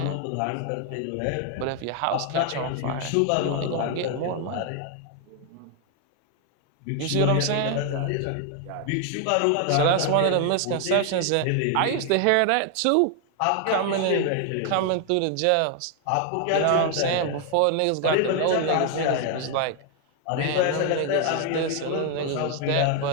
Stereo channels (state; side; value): different; both; correlation 0.00